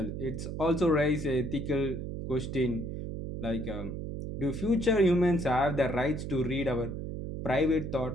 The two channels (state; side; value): noise; right; hum, 6 dB below the sound